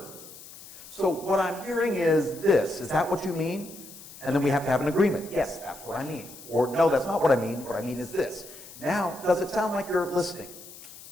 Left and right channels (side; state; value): left; noise; hiss, 17 dB below the sound